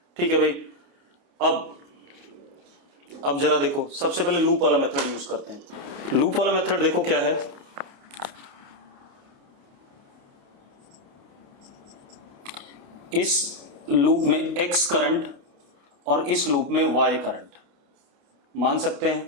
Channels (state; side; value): late; left; 29 ms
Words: ठीक है भाई। अब जरा देखो, सबसे पहले लूप वाला मेथड यूज करते हैं। लूप वाला मेथड देखो क्या है, इस लूप में x करंट और इस लूप में y करंट मान सकते